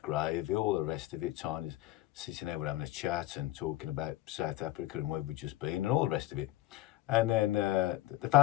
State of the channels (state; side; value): quieter; right; 16.2 dB